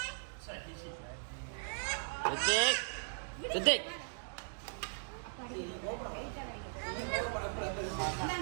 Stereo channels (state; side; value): silent; left; digital silence